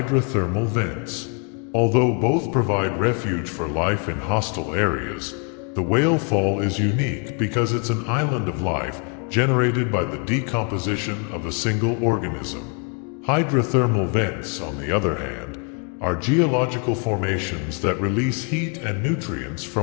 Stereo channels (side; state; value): right; quieter; 37.2 dB